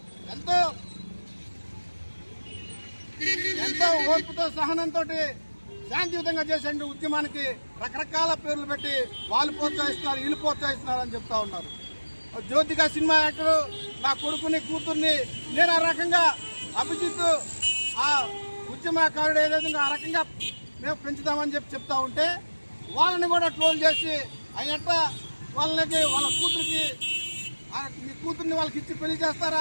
ఎంతో ఓర్పుతో సహనంతో శాంతియుతంగా చేసే ఉద్యమానికి రకరకాల పేర్లు పెట్టి వాళ్ళు ప్రోత్సహిస్తున్నారు వీళ్ళు ప్రోత్సహిస్తున్నారు అని చెప్తా ఉన్నారు। జ్యోతిక సినిమా యాక్టర్ నా కొడుకుని కూతుర్ని నేను ఆ రకంగా అభిజిత్ ఆ ఉద్యమకారుడు ఏదైతే ఆ రకంగా మేము పెంచుతామని చెప్తా ఉంటే వాళ్ళని కూడా ట్రోల్ చేసి అయ్యట్ట వాళ్ళకి వాళ్ళ కూతురికి మీ కూతుర్ని వాళ్ళకి ఇచ్చి పెళ్లి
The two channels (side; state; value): both; inverted; correlation -1.00